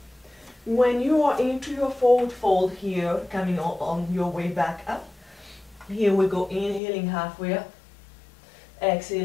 when you are into your forward fold here, coming on your way back up, here we go, inhaling halfway up,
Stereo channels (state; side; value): drops out; right; at 6.8 s